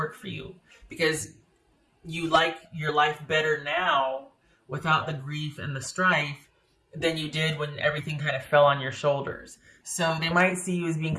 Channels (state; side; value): identical; both; correlation 1.00